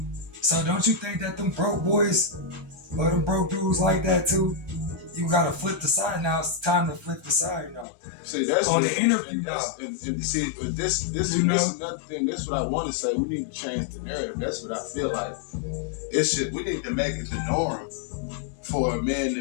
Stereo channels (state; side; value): drops out; right; at 7.9 s